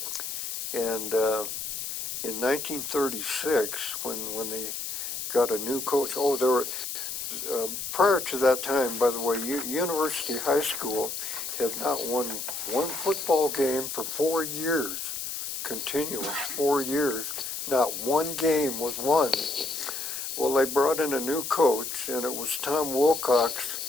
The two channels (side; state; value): left; noise; hiss, 5 dB below the sound